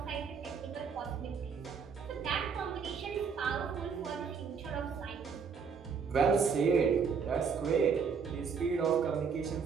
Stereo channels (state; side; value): quieter; left; 6.0 dB